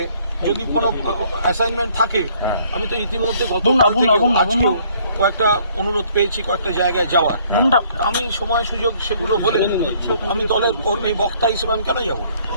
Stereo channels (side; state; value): both; inverted; correlation -0.62